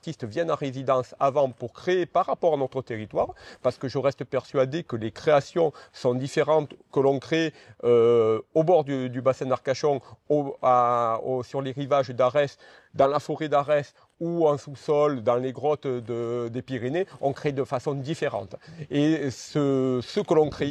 viennent en résidence avant pour créer par rapport à notre territoire, parce que je reste persuadé que les créations sont différentes que l'on crée au bord du bassin d'Arcachon, sur les rivages d'Arès, dans la forêt d'Arès, ou en sous-sol, dans les grottes des Pyrénées, on crée de façon différente. Et ce que l'on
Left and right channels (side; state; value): both; identical; correlation 1.00